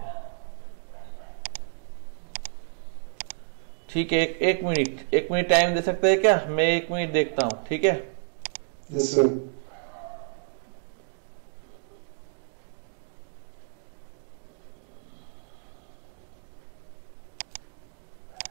है। ठीक है, एक मिनट टाइम दे सकते हैं क्या? मैं 1 मिनट देखता हूँ, ठीक है? Yes sir.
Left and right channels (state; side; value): silent; left; digital silence